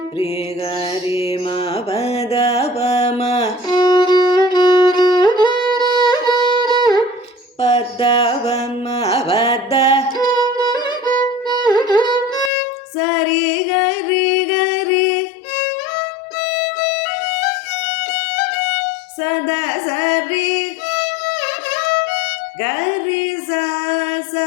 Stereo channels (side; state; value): right; drops out; at 12.5 s